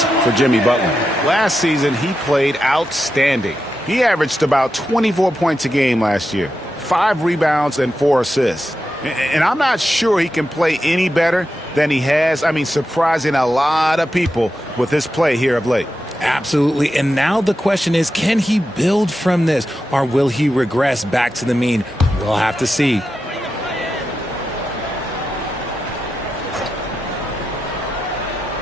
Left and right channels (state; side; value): normal; both; correlation 0.89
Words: for Jimmy Butler. Last season, he played outstanding. He averaged about 24 points a game last year, 5 rebounds and 4 assists. And I'm not sure he can play any better than he has. I mean, surprising a lot of people with his play here of late. Absolutely. And now the question is, can he build from this, or will he regress back to the mean? We'll have to see.